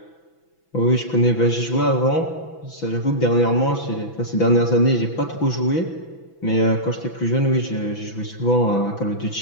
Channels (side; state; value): right; late; 6.0 ms